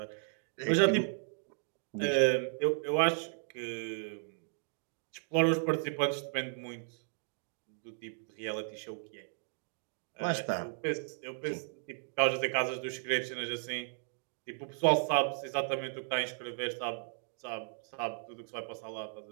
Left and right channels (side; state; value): left; silent; digital silence